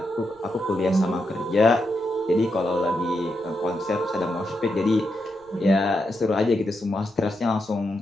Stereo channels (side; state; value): right; noise; rumble, 30 dB below the sound